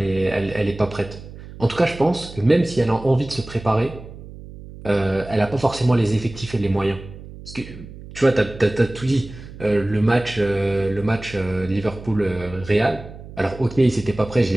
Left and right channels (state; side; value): noise; right; hum, 15 dB below the sound